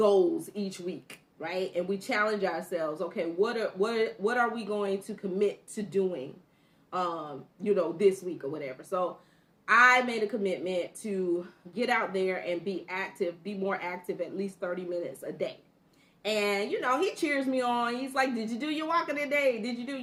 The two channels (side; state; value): both; identical; correlation 1.00